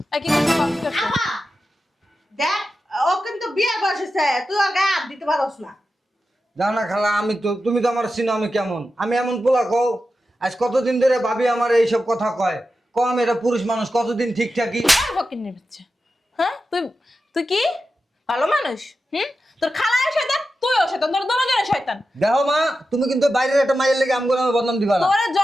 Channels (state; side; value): normal; both; correlation 0.91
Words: কি করছে? কি করছে? আপা দেখ, ও কিন্তু বিয়ে বয়স হয়েছে, তুই ওর গায়ে হাত দিতে পারস না। জানো না খালা, তুমি তো আমার চিনো আমি কেমন। আমি এমন পোলা কও, আজ কতদিন ধরে ভাবি আমার এইসব কথা কয়। কম এটা পুরুষ মানুষ কতদিন ঠিক থাকি। ফকিন্নির বাচ্চা। হ্যাঁ তুই তুই কি ভালো মানুষ? তোর খালায় শয়তান, তুইও শয়তান, তোর দুজনে শয়তান। দেখো মা, তুমি কিন্তু বাইরের একটা মাইয়ের লেগে আমগুলো আমি বদনাম দিবা না। তোরে